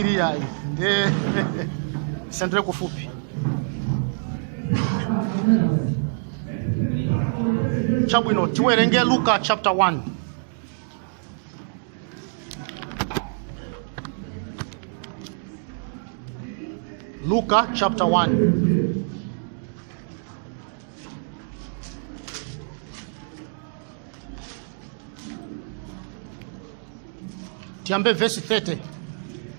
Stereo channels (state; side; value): silent; left; digital silence